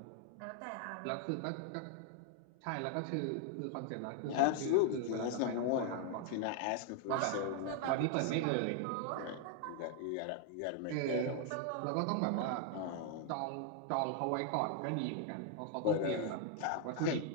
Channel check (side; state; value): both; different; correlation 0.00